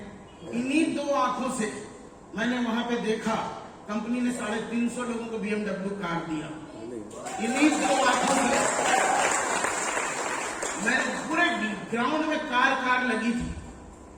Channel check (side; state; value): both; identical; correlation 1.00